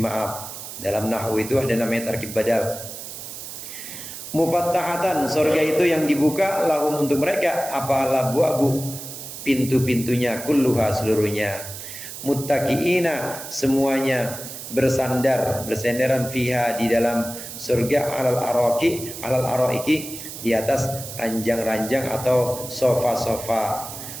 ma'ab. Dalam nahwu itu ada namanya tarkib badal. Mufattahatan, surga itu yang dibuka, lahum untuk mereka, apa labwabu, pintu-pintunya, kulluha, seluruhnya. Muttaqiina, semuanya bersandaran fiha, di dalam surga, alal araiki, di atas ranjang-ranjang atau sofa-sofa.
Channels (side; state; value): right; noise; hiss, 10 dB below the sound